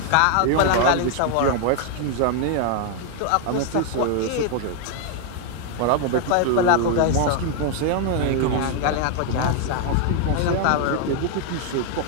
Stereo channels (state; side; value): different; both; correlation 0.00